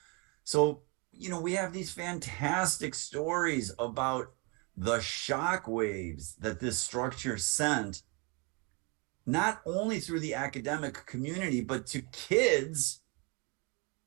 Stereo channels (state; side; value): quieter; left; 31.5 dB